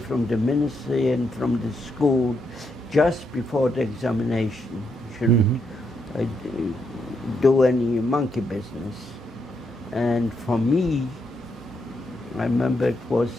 the ministry and from the school just before the examination. You shouldn't do any monkey business. And for me, I remember it was,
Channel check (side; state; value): both; normal; correlation 0.79